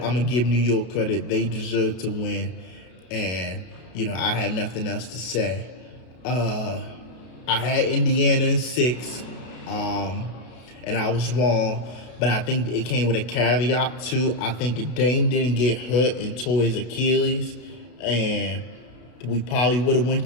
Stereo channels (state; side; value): late; right; 32 ms